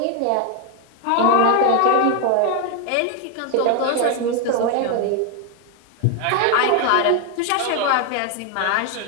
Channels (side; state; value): both; different; correlation 0.01